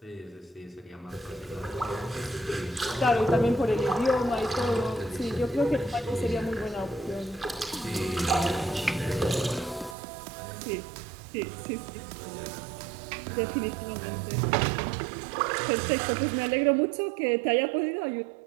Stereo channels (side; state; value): left; drops out; at 10.0 s